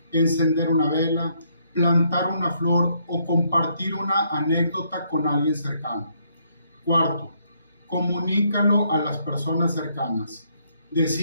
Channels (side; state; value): both; inverted; correlation -0.71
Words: encender una vela, plantar una flor o compartir una anécdota con alguien cercano. Cuarto, comunícalo a las personas cercanas.